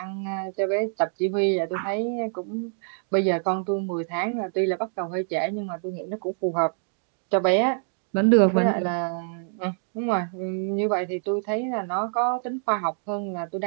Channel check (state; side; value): silent; left; digital silence